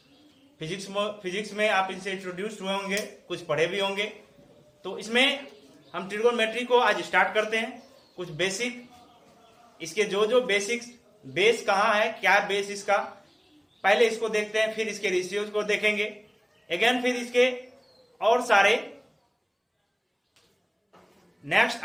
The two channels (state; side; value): identical; both; correlation 1.00